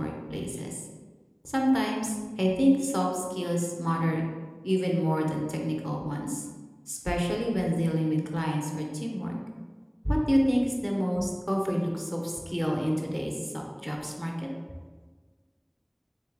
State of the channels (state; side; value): identical; both; correlation 1.00